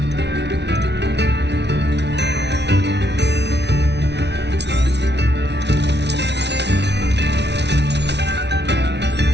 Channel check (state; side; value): late; left; 0.50 ms